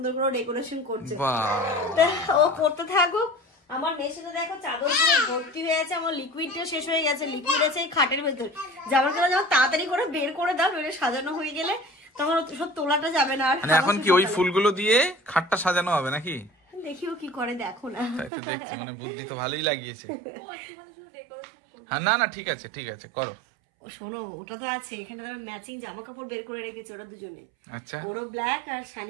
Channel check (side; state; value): left; drops out; at 18.3 s